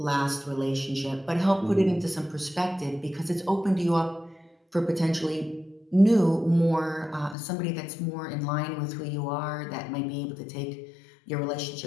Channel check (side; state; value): right; drops out; at 7.4 s